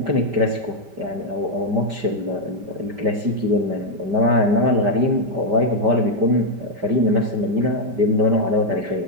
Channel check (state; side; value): late; left; 5.0 ms